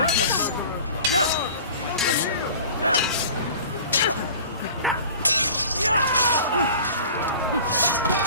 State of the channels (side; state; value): both; inverted; correlation -0.43